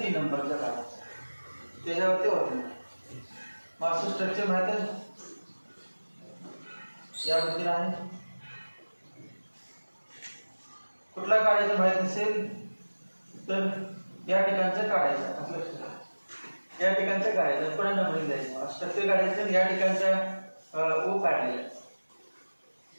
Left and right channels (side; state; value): both; inverted; correlation -1.00